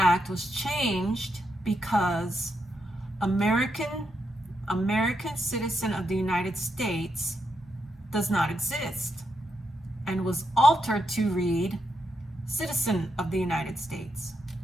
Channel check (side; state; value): both; normal; correlation 0.82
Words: was changed because American citizen of the United States does not exist, and was altered to read citizen of the United States.